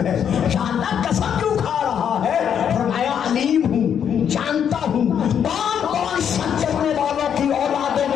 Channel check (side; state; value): right; quieter; 8.4 dB